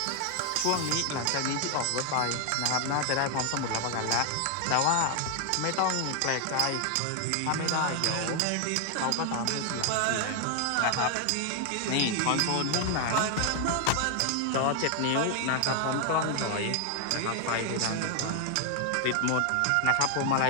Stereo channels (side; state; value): both; different; correlation 0.00